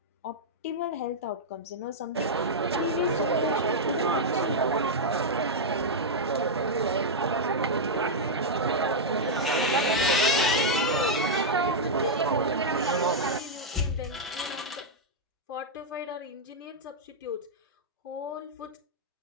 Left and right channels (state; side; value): normal; both; correlation -0.05